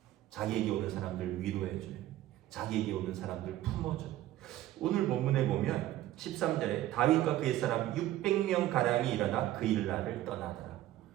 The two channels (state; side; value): quieter; left; 14.4 dB